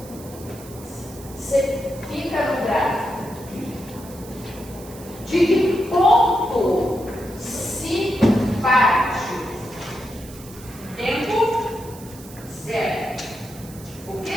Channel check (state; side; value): noise; right; hiss, 18 dB below the sound